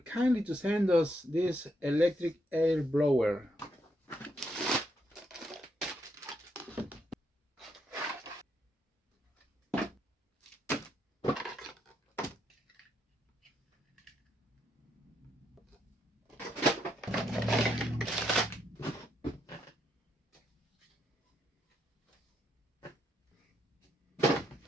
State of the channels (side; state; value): both; normal; correlation 0.77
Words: to send us this electric air blower.